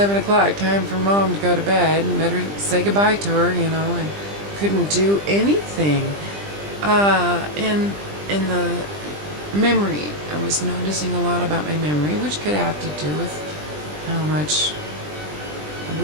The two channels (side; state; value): left; late; 20 ms